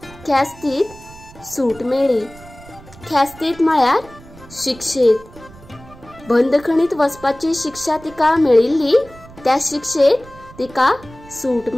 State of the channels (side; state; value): right; noise; rumble, 20 dB below the sound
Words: ख्यास्तीत सूट मेळ्ळी। ख्यास्तीत म्हळ्यार शिक्षेत। बंदखणीत वचपाची शिक्षा तिका मेळिल्ली, त्या शिक्षेत तिका सूट